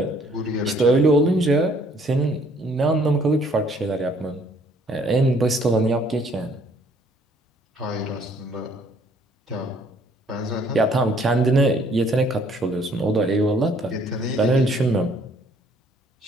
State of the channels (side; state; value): both; normal; correlation 0.62